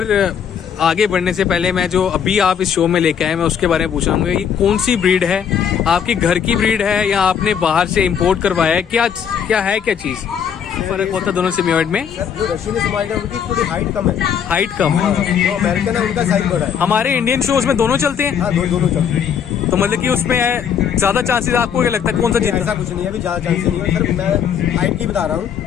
आगे बढ़ने से पहले मैं जो अभी आप इस शो में लेके आए मैं उसके बारे में पूछूंगा, ये कौन सी ब्रीड है? आपकी घर की ब्रीड है या आपने बाहर से इंपोर्ट करवाया है? क्या है क्या चीज फर्क होता है दोनों सिम्योइड में? जो रशियन सिम्योइड है उनकी थोड़ी हाइट कम है। हाइट कम? जो अमेरिकन है उनका साइज बड़ा है। हमारे इंडियन शोज में दोनों चलते हैं? हाँ, दोनों चलते हैं। तो मतलब कि उसमें ज्यादा चांसेस आपको क्या लगता है कौन सा जीत? ऐसा कुछ नहीं है, अभी ज्यादा चांसेस नहीं है सर, मैं हाइट की बता रहा हूँ।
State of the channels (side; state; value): right; quieter; 8.0 dB